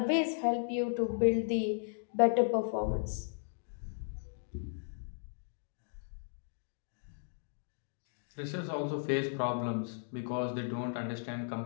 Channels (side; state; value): right; silent; digital silence